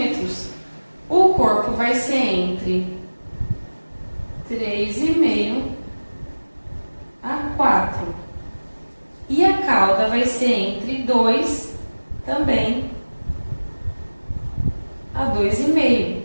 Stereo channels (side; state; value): both; inverted; correlation -1.00